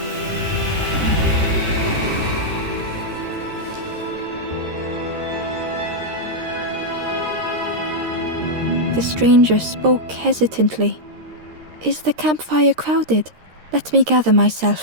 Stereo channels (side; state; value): left; late; 13 ms